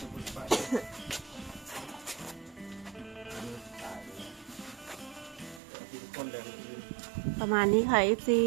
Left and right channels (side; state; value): left; drops out; at 5.6 s